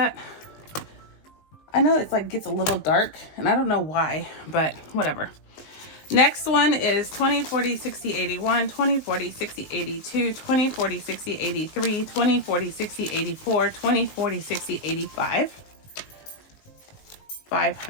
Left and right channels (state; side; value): late; right; 19 ms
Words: I know it's like gets a little dark and I don't know why, but whatever. Next one is 20, 40, 60, 81, 20, 40, 60, 82, 20, 40, 60, 83, 20, 40, 60, 84, 20, 40, 60, 85.